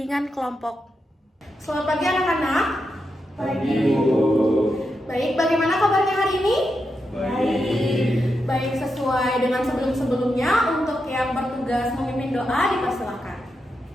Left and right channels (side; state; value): both; normal; correlation 0.86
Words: kelompok. Selamat pagi anak-anak. Pagi, Bu. Baik, bagaimana kabarnya hari ini? Baik. Baik, sesuai dengan sebelum-sebelumnya, untuk yang bertugas memimpin doa dipersilakan.